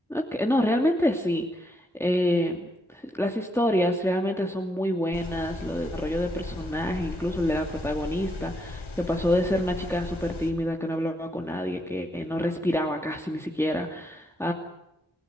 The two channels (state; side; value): normal; both; correlation 0.78